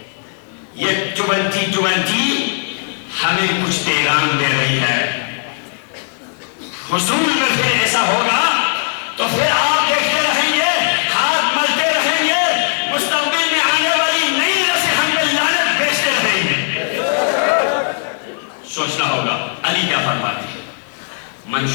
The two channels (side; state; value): right; silent; 56 dB below the other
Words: یہ جوانتی ہمیں کچھ پیغام دے رہی ہے۔ حضور میں پھر ایسا ہوگا تو پھر آپ دیکھتے رہیں گے، ہاتھ ملتے رہیں گے، مستقبل میں آنے والی نئی نسل ہم پہ لعنت بیچتے رہیں گے۔ سوچنا ہوگا علی کیا فرماتے ہیں،